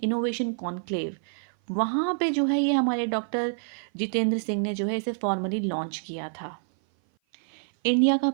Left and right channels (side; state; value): left; silent; 56 dB below the other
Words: innovation conclave. वहाँ पे जो है ये हमारे डॉक्टर जितेंद्र सिंह ने जो है इसे फॉर्मली लॉन्च किया था। इंडिया का